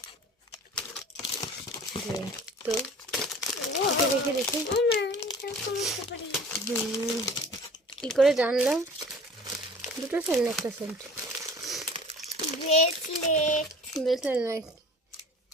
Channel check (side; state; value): both; normal; correlation 0.44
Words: তো এটা দেখে দেখি ও মা, এটা বুঝতে পারি। কি করে জানলাম? দুটো সেন্ট, একটা সেন্ট। ব্রেসলেট। ব্রেসলেট নয়,